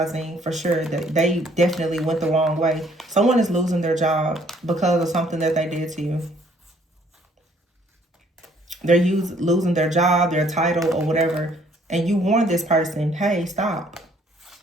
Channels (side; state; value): both; normal; correlation 0.62